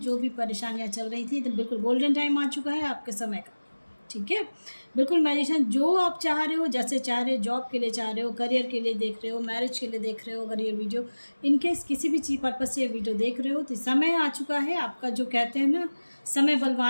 भी परेशानियां चल रही थी तो बिल्कुल गोल्डन टाइम आ चुका है आपके समय का। ठीक है, बिल्कुल मैजिशियन जो आप चाह रहे हो, जैसे चाह रहे हो, जॉब के लिए चाह रहे हो, करियर के लिए देख रहे हो, मैरिज के लिए देख रहे हो, अगर ये वीडियो इनकेस किसी भी चीज़ पर्पज से ये वीडियो देख रहे हो तो समय आ चुका है आपका। जो कहते हैं ना, समय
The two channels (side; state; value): both; inverted; correlation -1.00